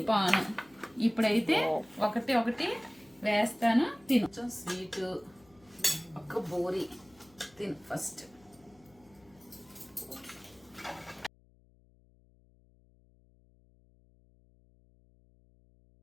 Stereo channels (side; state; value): left; noise; hum, 29 dB below the sound